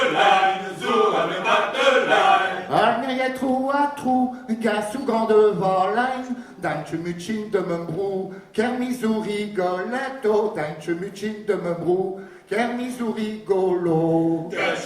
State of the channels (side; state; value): both; identical; correlation 1.00